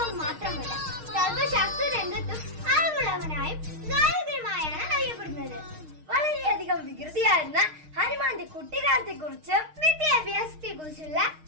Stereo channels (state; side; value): late; left; 6.5 ms